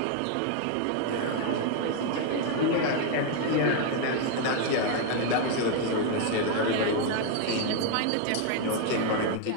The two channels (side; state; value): both; different; correlation 0.01